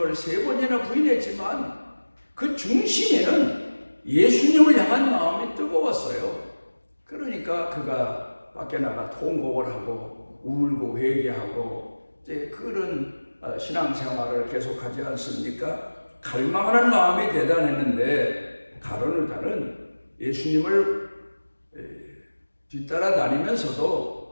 3번이나 부인했지만 그 중심에는 예수님을 향한 마음이 뜨거웠어요. 그러니까 그가 밖에 나가 통곡을 하고 울고 회개하고 이제 그런 신앙생활을 계속하지 않습니까? 갈망하는 마음이 대단했는데 가룟 유다는 예수님을 뒤따라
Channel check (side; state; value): both; inverted; correlation -1.00